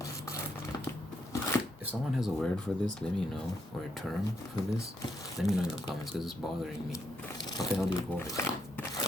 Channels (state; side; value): normal; both; correlation 0.77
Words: If someone has a word for this, let me know. Or a term for this, let me know in the comments, because it's bothering me. What the hell do you call it?